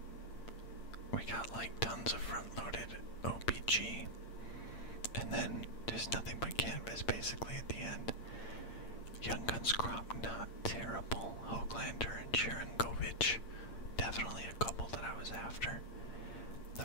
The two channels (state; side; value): late; right; 8.7 ms